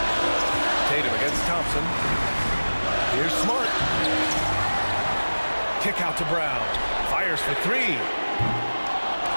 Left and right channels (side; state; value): both; inverted; correlation -1.00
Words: Tatum against Thompson. Here's Smart. Kick out to Brown. Fires for 3.